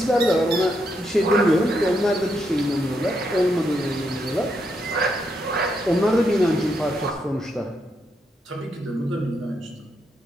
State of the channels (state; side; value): normal; both; correlation 0.79